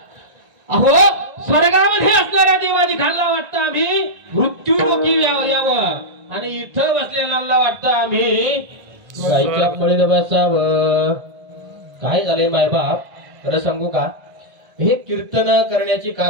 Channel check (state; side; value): late; left; 1.6 ms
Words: अहो स्वर्गामध्ये असणाऱ्या देवादी खाल्ला वाटतं आम्ही मृत्यू लोकी यावं, आणि इथं बसलेला वाटतं आम्ही गायच्या पळीत बसावं. काय झालंय मायबाप, खरं सांगू का? हे कीर्तन करण्याची का